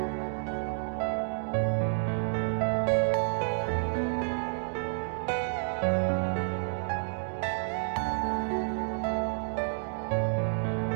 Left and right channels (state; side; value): silent; left; 58 dB below the other